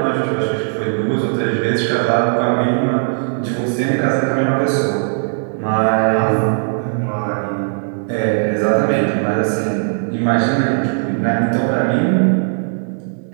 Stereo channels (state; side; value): silent; left; 68 dB below the other